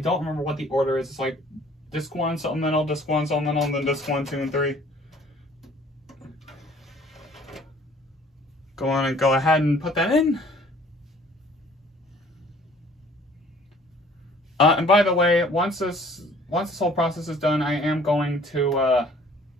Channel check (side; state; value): both; normal; correlation 0.54